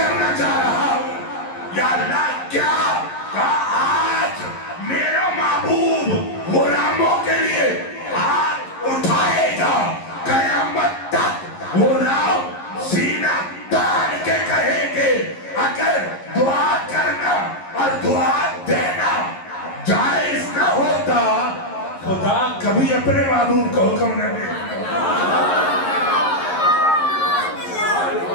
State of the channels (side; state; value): right; late; 11 ms